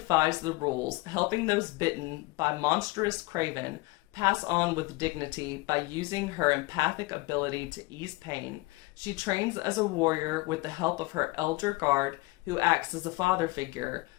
the rules, helping those bitten by monstrous craven pass on with dignity by using her empathic ability to ease pain. She trains as a warrior with the help of her elder guard, who acts as a father figure,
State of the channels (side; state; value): right; quieter; 22.5 dB